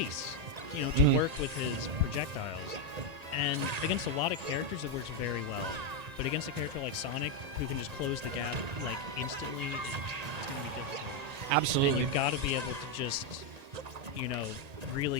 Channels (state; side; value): late; left; 1.9 ms